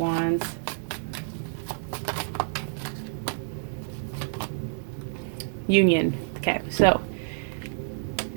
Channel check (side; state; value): left; silent; digital silence